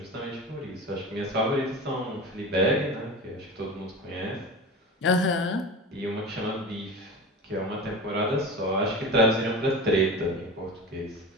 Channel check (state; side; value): normal; both; correlation 0.31